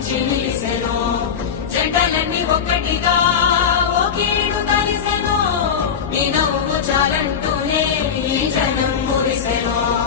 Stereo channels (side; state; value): right; quieter; 7.2 dB